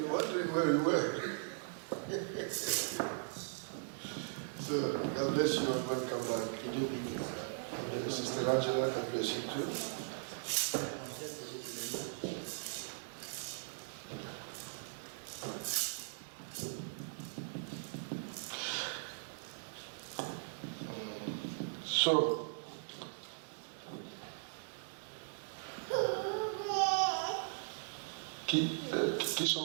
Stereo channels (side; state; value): left; silent; digital silence